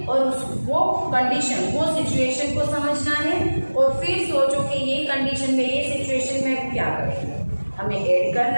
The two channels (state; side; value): inverted; both; correlation -1.00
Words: और वो कंडीशन, वो सिचुएशन को समझना है और फिर सोचो कि ये कंडीशन में, ये सिचुएशन में क्या करेंगे। हमें ऐड